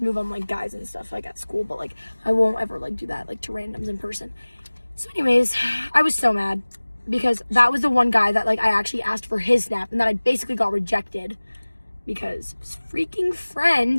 move on, like, guys and stuff, like, at school. But, like, I won't ever, like, do that, like, to randoms in person. So, anyways, I was so mad because that was the one guy that, like, I actually asked for his Snap and that I basically got rejected because his freaking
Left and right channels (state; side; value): inverted; both; correlation -1.00